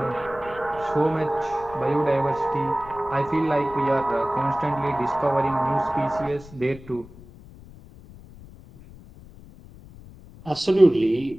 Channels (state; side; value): noise; left; rumble, 19 dB below the sound